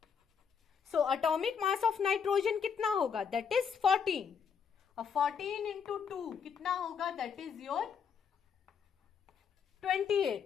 So atomic mass of nitrogen कितना होगा? That is 14। और 14 इंटू 2 कितना होगा? That is your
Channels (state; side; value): quieter; right; 6.8 dB